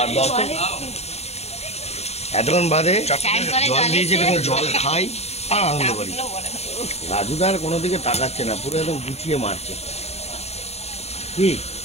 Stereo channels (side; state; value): right; late; 0.31 ms